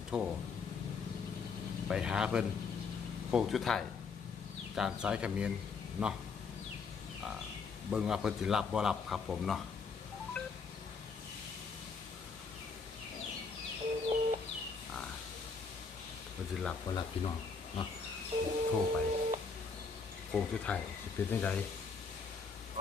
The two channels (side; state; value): right; quieter; 5.0 dB